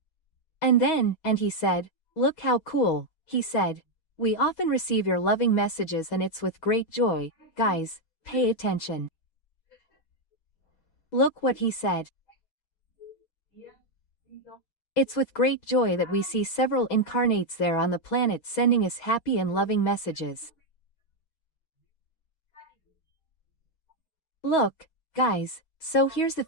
And he said, look how cool, he said. We often receive your loving messages and it's with great joy, guys, pay attention. Look what he said. It's with great joy that we see several incarnates there on the planet sending us happy and loving messages. Look, guys, so here's the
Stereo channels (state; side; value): late; right; 6.2 ms